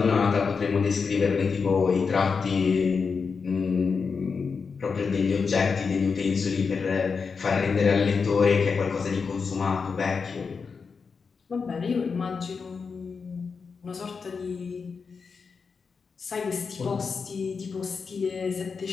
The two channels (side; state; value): right; quieter; 5.3 dB